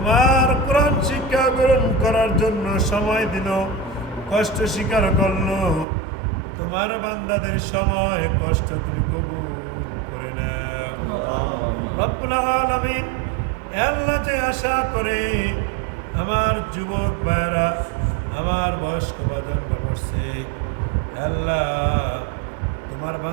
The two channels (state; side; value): drops out; left; at 5.9 s